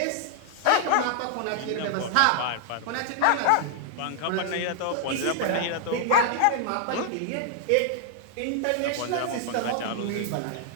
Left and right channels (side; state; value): both; different; correlation 0.00